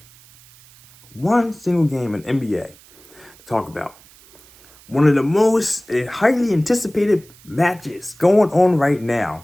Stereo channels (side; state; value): right; noise; hiss, 25 dB below the sound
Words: in NBA to talk about. One of the most highly anticipated matches going on right now.